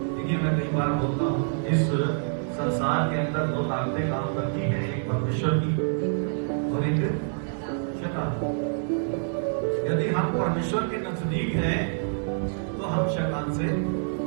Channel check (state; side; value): silent; left; digital silence